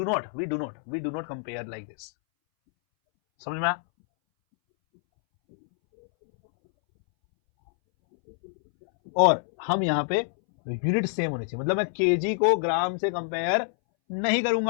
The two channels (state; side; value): silent; right; 61 dB below the other